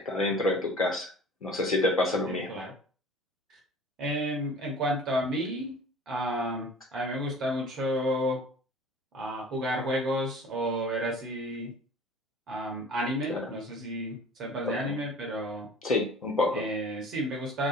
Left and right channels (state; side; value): normal; both; correlation 0.44